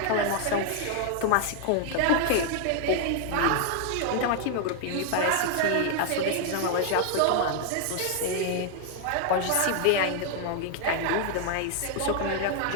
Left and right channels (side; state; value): both; different; correlation 0.00